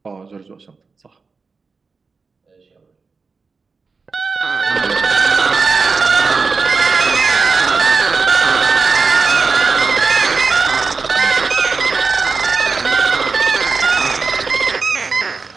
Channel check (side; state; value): left; quieter; 4.6 dB